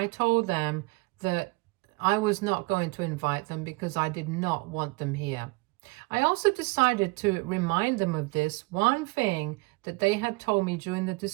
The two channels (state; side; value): quieter; left; 26.6 dB